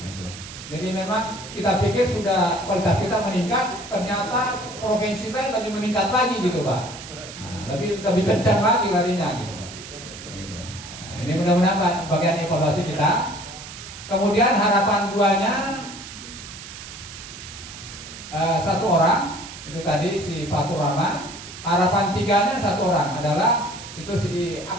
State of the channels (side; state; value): right; noise; hiss, 13 dB below the sound